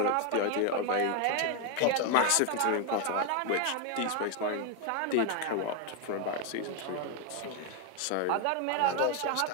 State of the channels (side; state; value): both; different; correlation 0.01